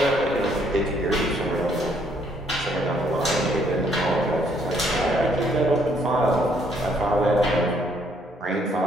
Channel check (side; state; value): both; normal; correlation 0.68